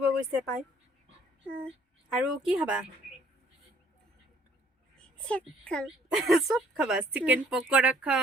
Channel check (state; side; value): normal; both; correlation 0.61